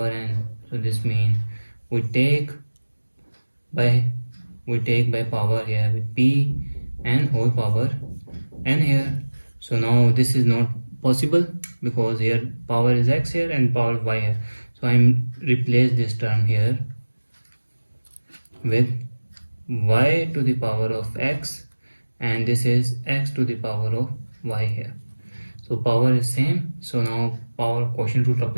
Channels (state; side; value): inverted; both; correlation -1.00